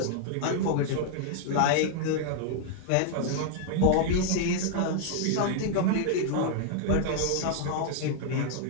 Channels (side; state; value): both; different; correlation 0.00